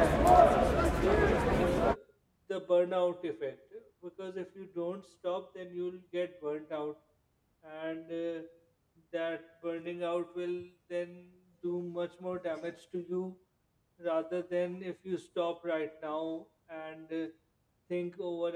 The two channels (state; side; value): identical; both; correlation 1.00